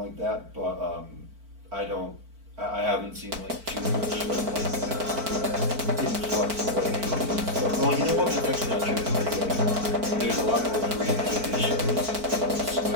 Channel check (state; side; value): late; left; 4.5 ms